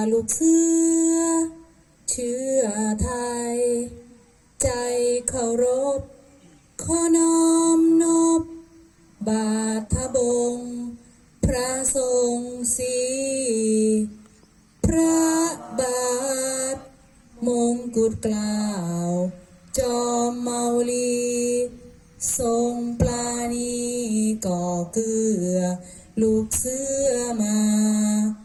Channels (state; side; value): identical; both; correlation 1.00